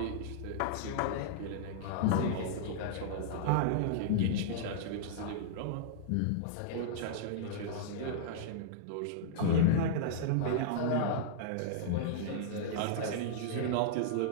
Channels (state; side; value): different; both; correlation -0.02